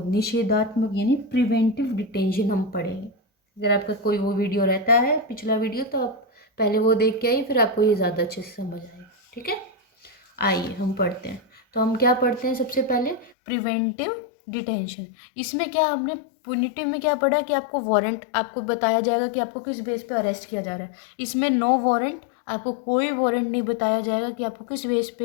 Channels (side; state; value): right; drops out; at 13.4 s